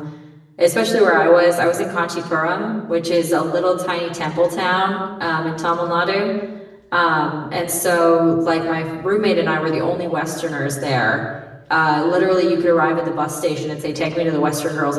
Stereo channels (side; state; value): both; identical; correlation 1.00